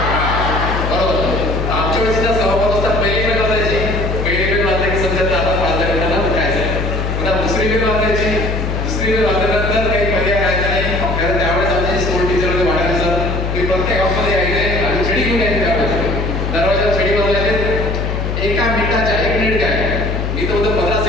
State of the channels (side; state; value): left; noise; hum, 2 dB below the sound